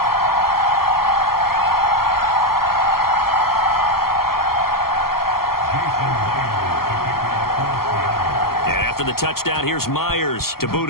And after the touchdown, here's Myers to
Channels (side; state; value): right; late; 0.93 ms